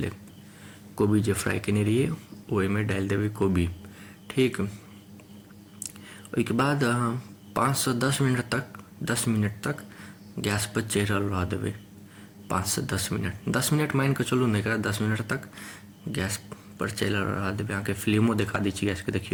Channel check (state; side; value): identical; both; correlation 1.00